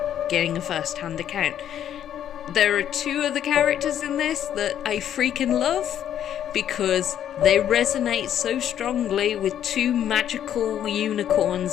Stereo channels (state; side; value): quieter; right; 10.2 dB